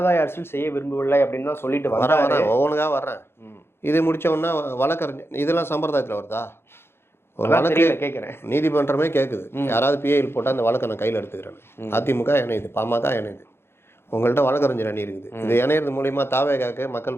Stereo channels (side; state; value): right; late; 0.12 ms